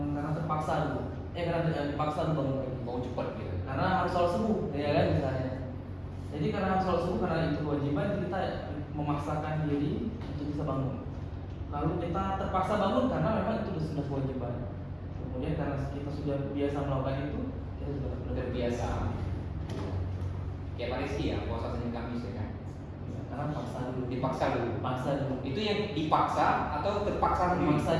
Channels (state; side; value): identical; both; correlation 1.00